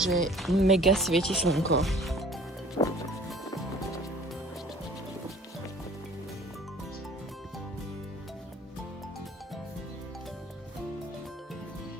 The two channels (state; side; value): normal; both; correlation 0.50